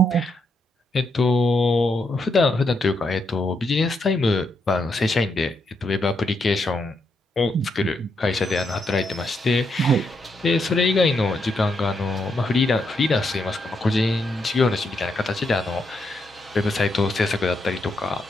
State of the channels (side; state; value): both; normal; correlation 0.80